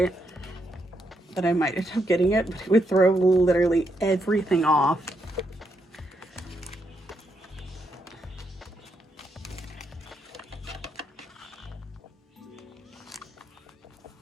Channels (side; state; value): both; normal; correlation 0.79